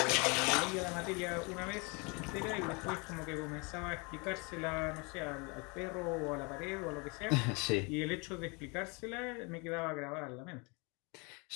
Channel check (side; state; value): right; quieter; 30.3 dB